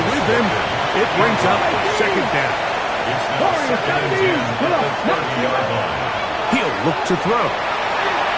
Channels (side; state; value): both; identical; correlation 1.00